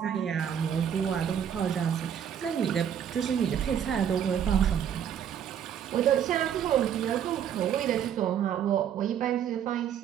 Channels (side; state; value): left; quieter; 9.0 dB